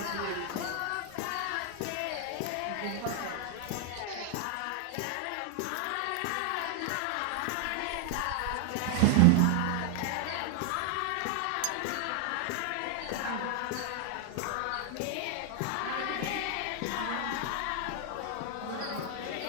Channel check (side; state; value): both; different; correlation 0.00